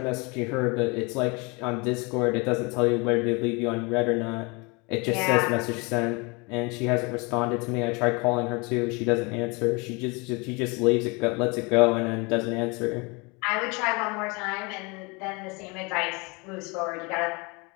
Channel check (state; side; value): quieter; right; 28.7 dB